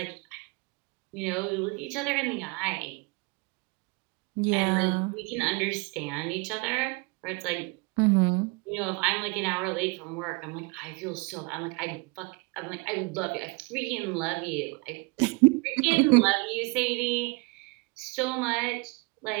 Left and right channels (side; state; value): left; quieter; 28.1 dB